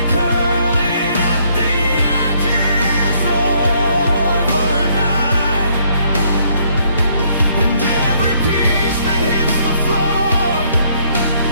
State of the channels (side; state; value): both; inverted; correlation -0.68